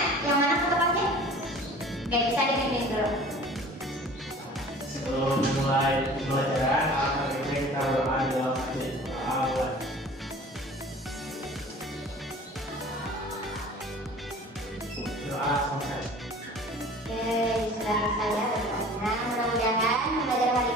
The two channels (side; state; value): both; normal; correlation 0.45